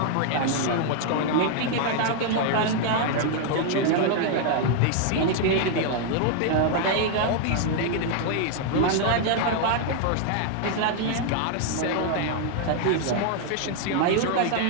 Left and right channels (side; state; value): both; different; correlation 0.00